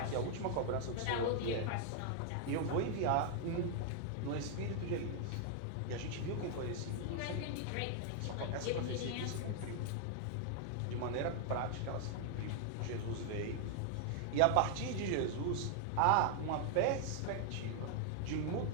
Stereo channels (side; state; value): both; different; correlation 0.00